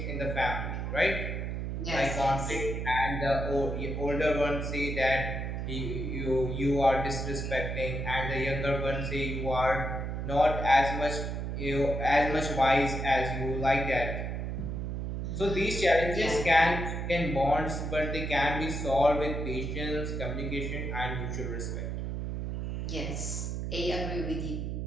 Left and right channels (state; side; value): noise; right; hum, 3 dB below the sound